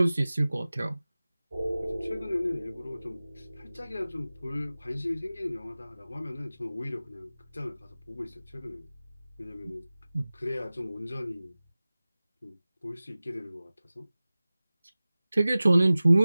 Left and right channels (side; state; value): both; inverted; correlation -0.97